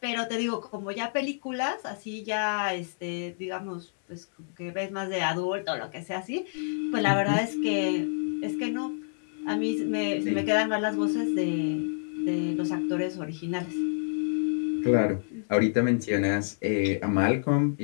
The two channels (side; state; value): right; silent; digital silence